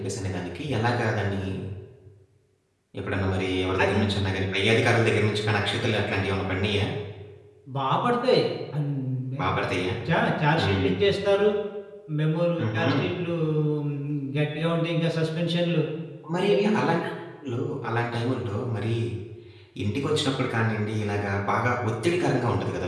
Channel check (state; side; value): identical; both; correlation 1.00